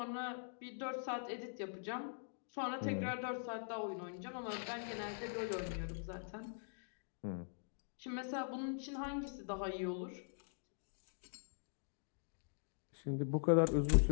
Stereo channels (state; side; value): silent; right; digital silence